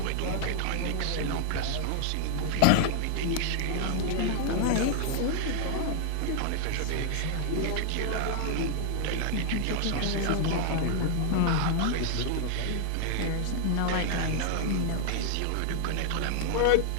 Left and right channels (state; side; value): different; both; correlation 0.00